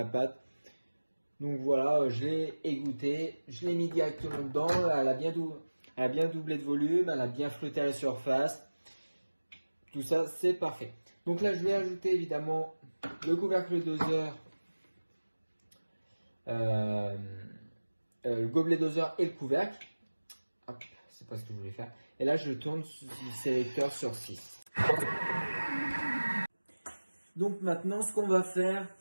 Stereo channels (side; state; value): both; inverted; correlation -1.00